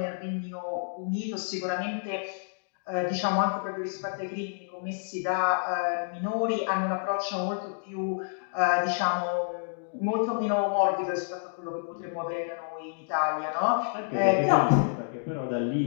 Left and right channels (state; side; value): silent; right; digital silence